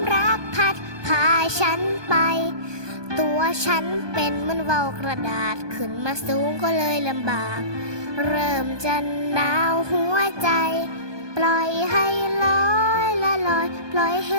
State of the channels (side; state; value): left; late; 1.2 ms